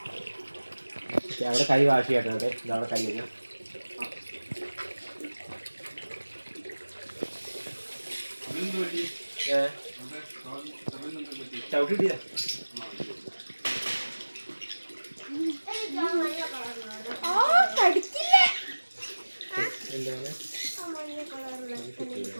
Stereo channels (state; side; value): inverted; both; correlation -1.00